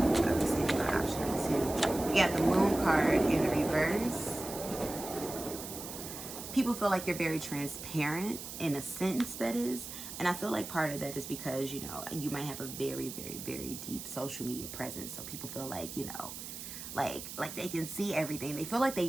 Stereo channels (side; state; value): right; noise; hiss, 9 dB below the sound